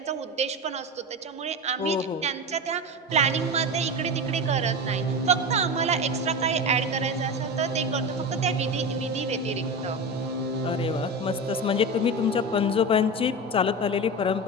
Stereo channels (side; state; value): both; normal; correlation 0.24